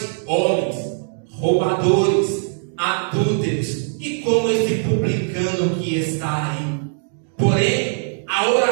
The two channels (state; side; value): silent; left; digital silence